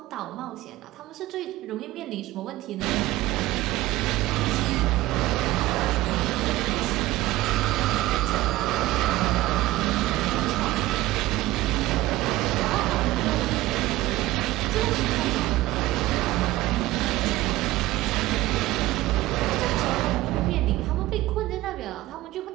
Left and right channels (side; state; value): left; quieter; 17.1 dB